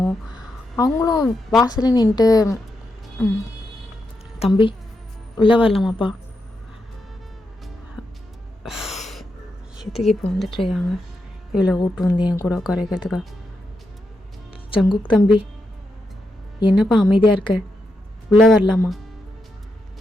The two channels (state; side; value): normal; both; correlation 0.85